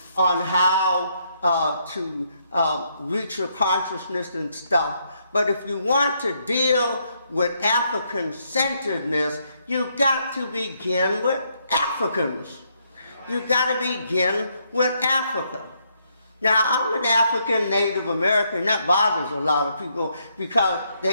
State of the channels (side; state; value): both; inverted; correlation -0.75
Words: on how to reach your consciousness and stuff, but if you want to deal with African-centeredness, you've got to begin with Africans. You've got to begin with Africa. Now, I'm an African Native American. That bothers a lot of people because